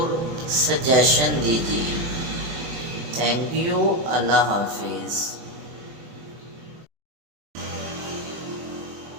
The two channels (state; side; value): late; left; 24 ms